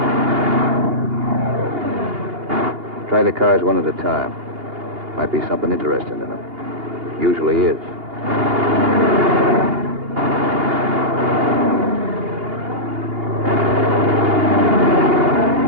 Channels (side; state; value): left; late; 2.8 ms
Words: Try the cars one at a time. Might be something interesting in them. Usually is.